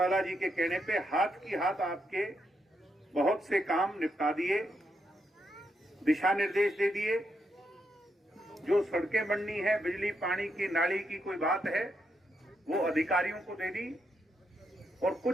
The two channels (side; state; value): both; normal; correlation 0.81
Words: जी के कहने पे हाथ की हाथ आपके बहुत से काम निपटा दिए, दिशा निर्देश दे दिए। जो सड़कें बननी है, बिजली पानी की नाली की कोई बात है, वो अधिकारियों को दे दी। और